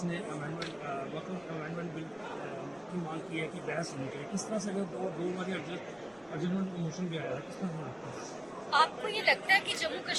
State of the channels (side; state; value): left; noise; rumble, 29 dB below the sound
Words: نے وقف امینڈمنٹ بل کی مانگ کی ہے کہ بحث ہونی چاہیے. کس طرح سے اگر دو بار ارجنٹ موشن بھی آیا ہے, کس طرح سے لگتا ہے؟ آپ کو یہ لگتا ہے کہ جموں